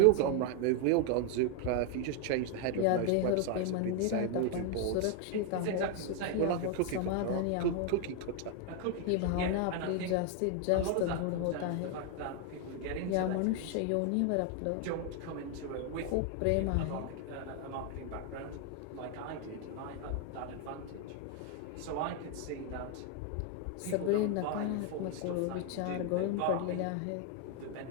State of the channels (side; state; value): both; different; correlation 0.01